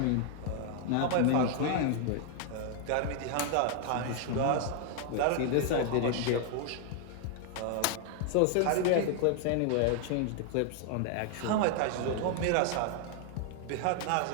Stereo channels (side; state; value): both; different; correlation 0.00